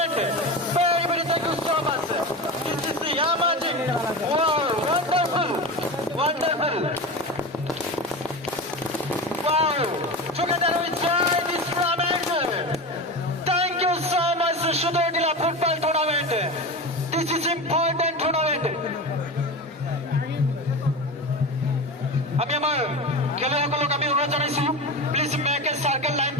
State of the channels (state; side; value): normal; both; correlation 0.25